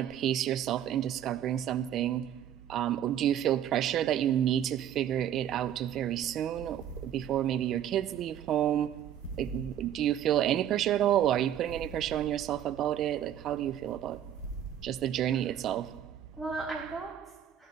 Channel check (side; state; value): left; quieter; 10.5 dB